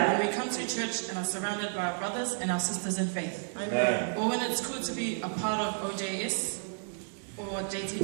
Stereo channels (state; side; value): silent; left; digital silence